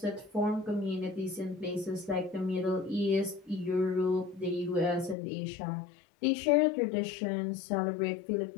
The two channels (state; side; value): drops out; right; at 5.2 s